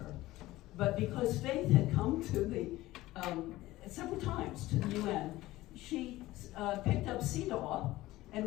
But because Faith had come to several times to the UN, she picked up CEDAW and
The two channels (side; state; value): right; quieter; 17.3 dB